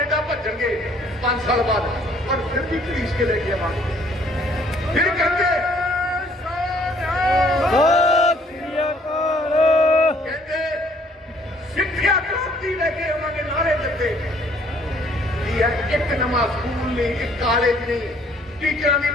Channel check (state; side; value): normal; both; correlation 0.61